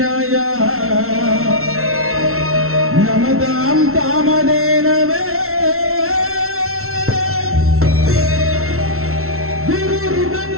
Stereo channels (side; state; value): left; late; 0.62 ms